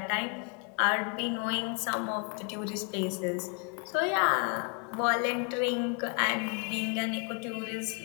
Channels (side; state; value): right; quieter; 36.3 dB